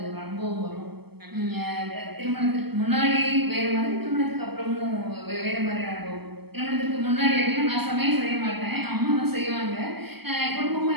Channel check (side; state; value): left; late; 0.96 ms